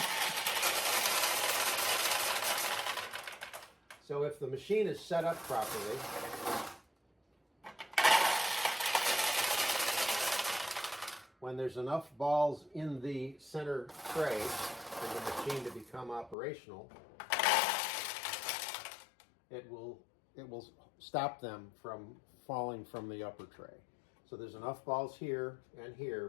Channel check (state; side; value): drops out; right; at 16.4 s